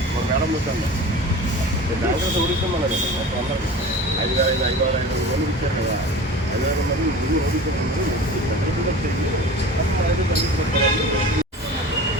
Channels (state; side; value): normal; both; correlation 0.37